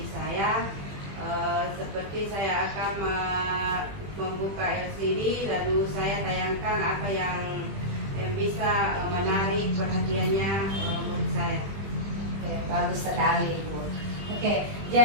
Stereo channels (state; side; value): late; left; 20 ms